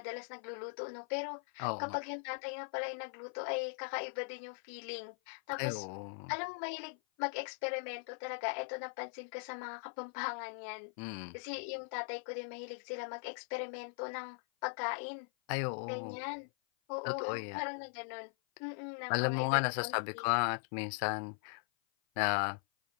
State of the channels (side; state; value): right; silent; 51 dB below the other